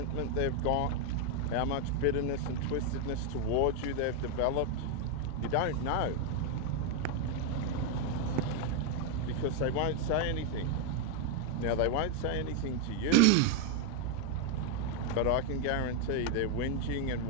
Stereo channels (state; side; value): different; both; correlation 0.00